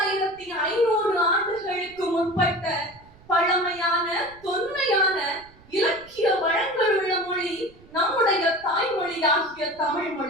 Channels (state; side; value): noise; right; rumble, 26 dB below the sound